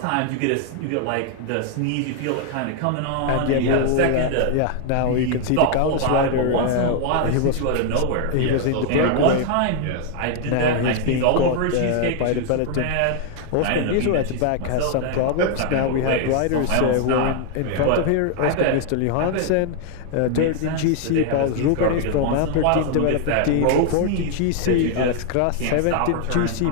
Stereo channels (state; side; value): different; both; correlation 0.00